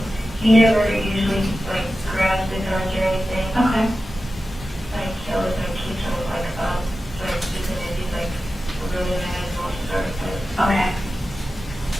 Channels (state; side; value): normal; both; correlation 0.93